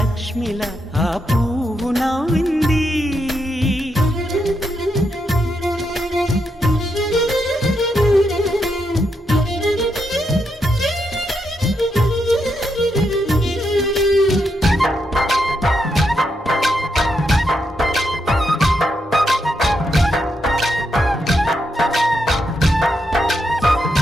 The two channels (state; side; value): normal; both; correlation 0.81